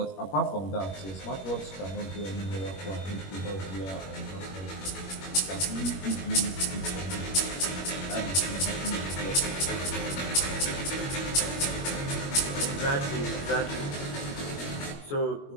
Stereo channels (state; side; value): late; right; 21 ms